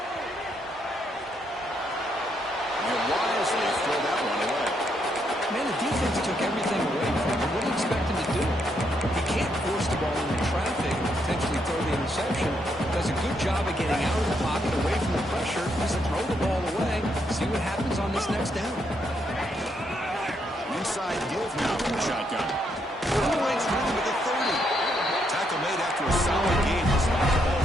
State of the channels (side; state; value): both; normal; correlation 0.76